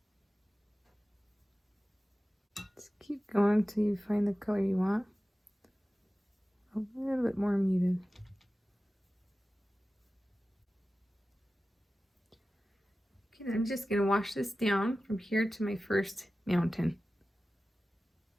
Just keep going until you find the color you want. A little bit more muted. Okay, I'm just going to wash this down from here to my first mountain.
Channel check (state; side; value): normal; both; correlation 0.95